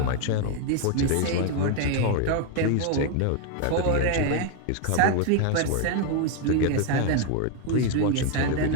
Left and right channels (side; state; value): both; different; correlation 0.00